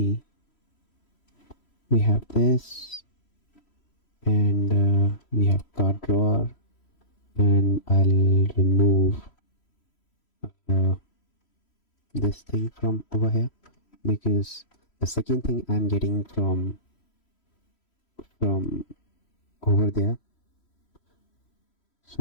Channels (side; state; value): right; late; 3.1 ms